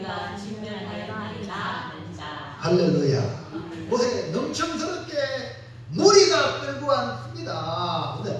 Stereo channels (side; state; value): both; identical; correlation 1.00